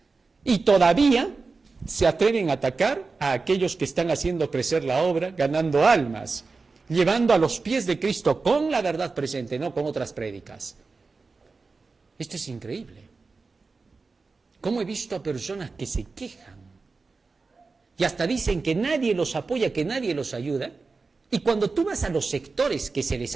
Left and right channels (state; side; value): quieter; left; 4.2 dB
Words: Y todavía se atreven a atacar a aquellos que están haciendo crecer la obra, ganando almas, llevando a los pies de Cristo con la verdad presente, no con otras prédicas. Esto es increíble. ¿Cómo he visto a personas que se quejan? Y hasta dicen que nadie los apoya, que nadie los ayuda. Y cuando tú vas a los sectores que se les